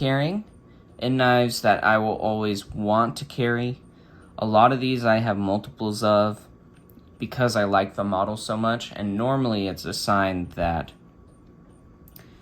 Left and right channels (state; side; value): identical; both; correlation 1.00